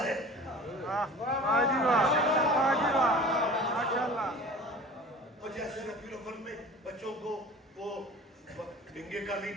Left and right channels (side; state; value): both; normal; correlation 0.41